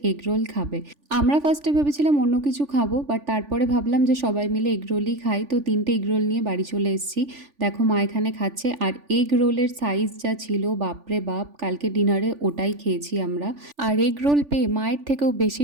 এগরোল খাবে। আমরা ফার্স্টে ভেবেছিলাম অন্য কিছু খাবো, বাট তারপরে ভাবলাম যে সবাই মিলে এগরোলই খাই। তো 3টে এগরোল নিয়ে বাড়ি চলে এসেছি। দেখো মা এখানে খাচ্ছে। আর এগরোলের সাইজ যা ছিল, বাপরে বাপ, কালকে ডিনারে ওটাই খেয়েছি আমরা। আর এগরোল পেয়ে মায়ের থেকেও বেশি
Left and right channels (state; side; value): late; left; 3.4 ms